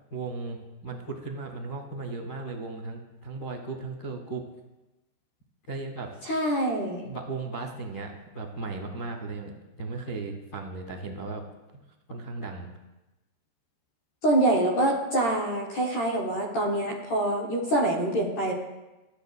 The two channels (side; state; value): right; late; 13 ms